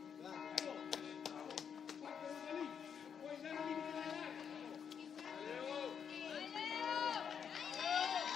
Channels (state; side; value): quieter; right; 7.4 dB